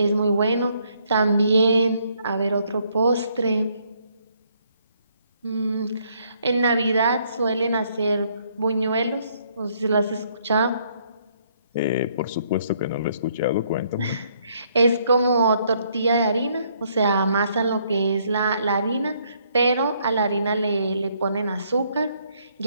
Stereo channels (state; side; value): inverted; both; correlation -0.69